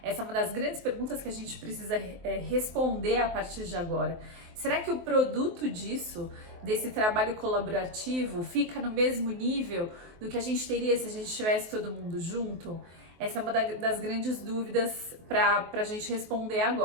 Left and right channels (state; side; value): late; left; 23 ms